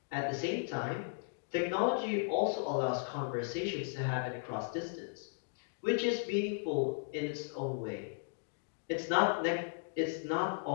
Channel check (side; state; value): right; silent; digital silence